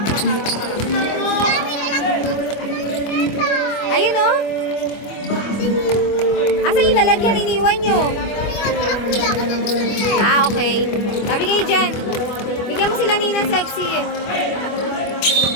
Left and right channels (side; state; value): right; late; 25 ms